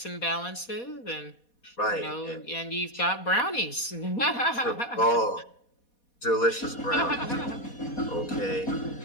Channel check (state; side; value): late; right; 4.2 ms